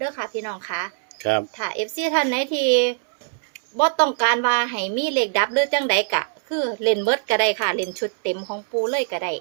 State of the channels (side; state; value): left; silent; 64 dB below the other